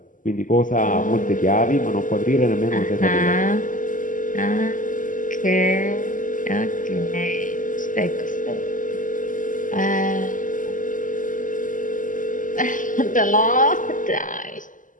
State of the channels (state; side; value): late; right; 0.38 ms